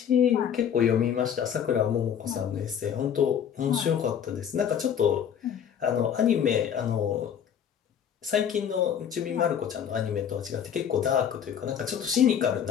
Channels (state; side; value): quieter; right; 8.6 dB